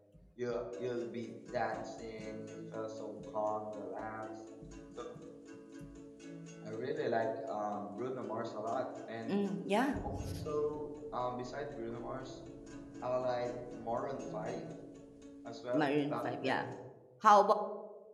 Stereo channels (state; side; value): identical; both; correlation 1.00